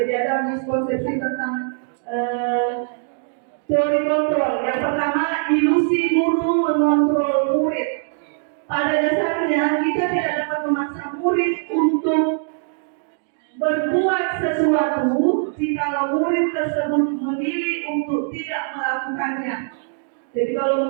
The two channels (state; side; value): silent; left; 64 dB below the other